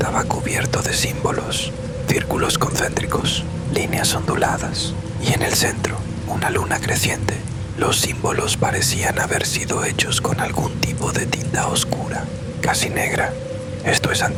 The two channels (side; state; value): both; identical; correlation 1.00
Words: cubierto de símbolos, círculos concéntricos, líneas onduladas, y en el centro, una luna creciente. Los símbolos parecían haber sido hechos con algún tipo de tinta oscura, casi negra. Esto es